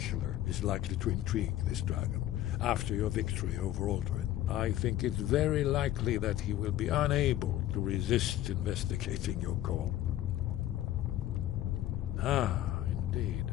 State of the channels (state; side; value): quieter; right; 13.4 dB